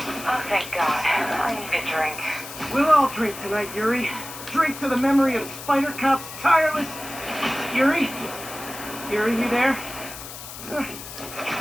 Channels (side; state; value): left; noise; hiss, 12 dB below the sound